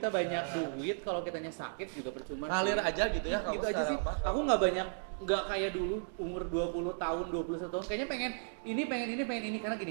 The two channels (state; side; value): silent; left; 54 dB below the other